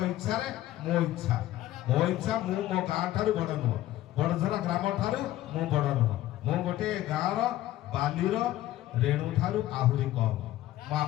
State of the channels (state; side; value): quieter; right; 14.6 dB